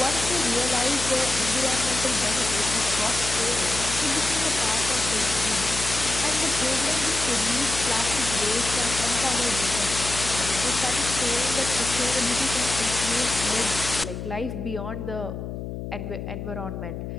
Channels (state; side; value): noise; left; hum, 7 dB below the sound